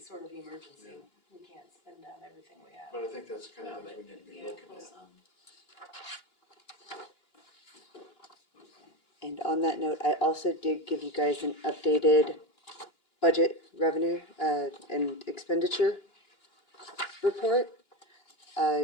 of emergency. We can't spend down everything we have. But I think that's the kind no, of but things we need to be yeah, looking pull at. some. And on that note, I also did give you guys an updated budget revenue, and expenditure report.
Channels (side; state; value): right; late; 2.9 ms